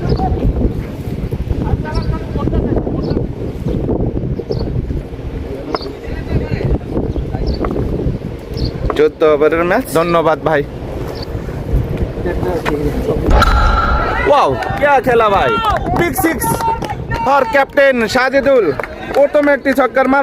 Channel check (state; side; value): identical; both; correlation 1.00